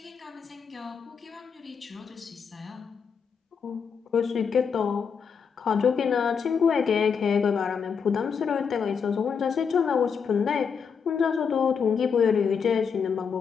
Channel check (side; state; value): right; quieter; 6.4 dB